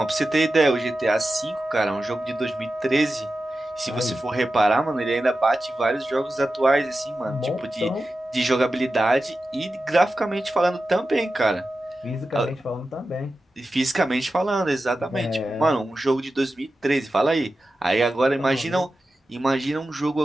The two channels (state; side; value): normal; both; correlation 0.92